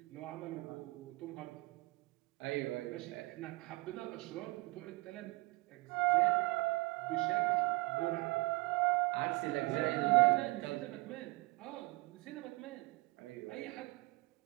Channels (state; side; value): quieter; left; 24.2 dB